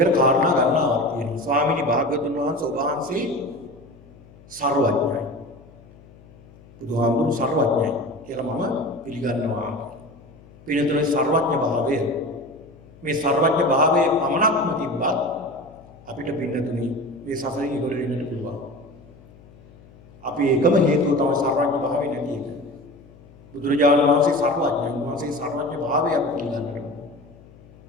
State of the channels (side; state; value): left; noise; hum, 24 dB below the sound